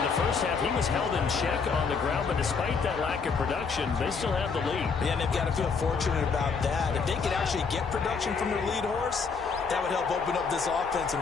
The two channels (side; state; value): right; quieter; 5.2 dB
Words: the first half, he was held in check on the ground, but despite that lack of production, they still have the lead. Yeah, and they've got to feel fortunate about that. If they could actually get production from their lead horse, that would help open up this offense